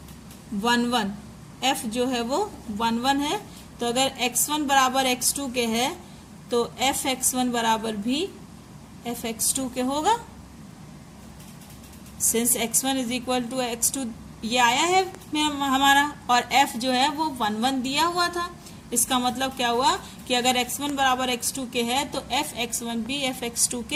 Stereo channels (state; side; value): identical; both; correlation 1.00